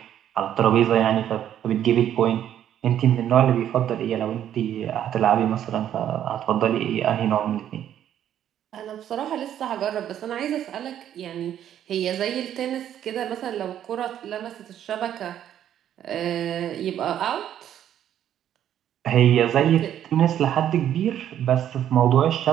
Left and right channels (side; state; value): left; quieter; 10.6 dB